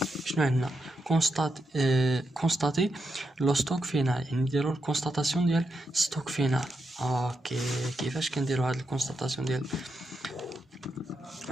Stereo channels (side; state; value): both; normal; correlation 0.84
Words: شنو عندنا؟ كونستاتي لو ستوك فينال، يعني نديرو الكونستاتاسيون ديال ستوك فينال. اوكي كيفاش كنديرو هاد الكونستاتاسيون